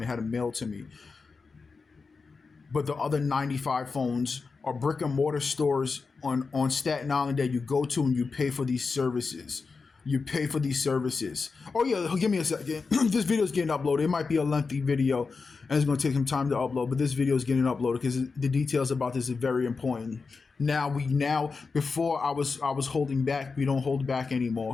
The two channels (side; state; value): right; quieter; 4.6 dB